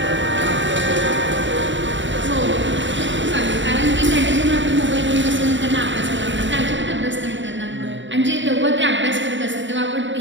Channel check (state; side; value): late; left; 0.54 ms